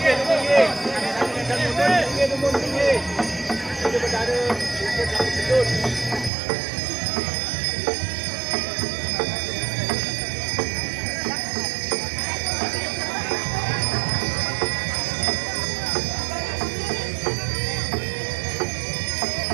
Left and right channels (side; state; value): left; drops out; at 6.3 s